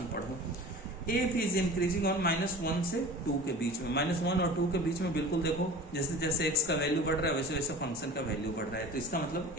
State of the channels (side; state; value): both; normal; correlation 0.38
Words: पढ़ो। एफ इज इंक्रीजिंग ऑन -1 से 2 के बीच में। -1 और 2 के बीच में बिल्कुल देखो जैसे जैसे एक्स का वैल्यू बढ़ रहा है वैसे वैसे फंक्शन का वैल्यू बढ़ रहा है, तो इसका मतलब